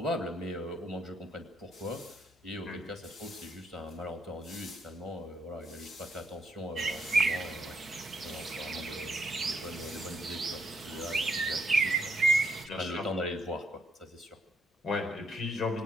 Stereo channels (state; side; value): normal; both; correlation 0.73